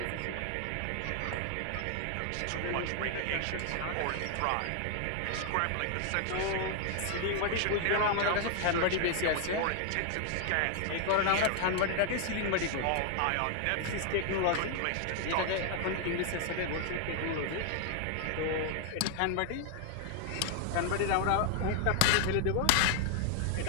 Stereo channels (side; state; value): both; different; correlation 0.00